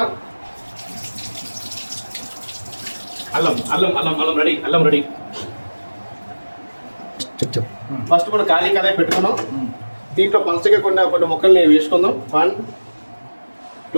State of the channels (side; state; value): both; inverted; correlation -1.00